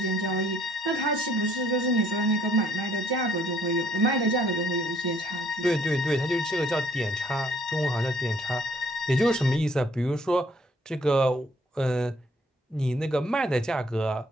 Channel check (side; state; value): both; normal; correlation 0.63